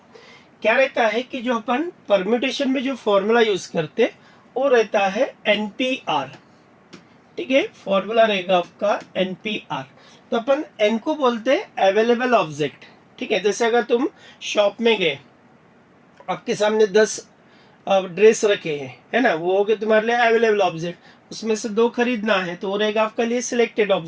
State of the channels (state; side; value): identical; both; correlation 1.00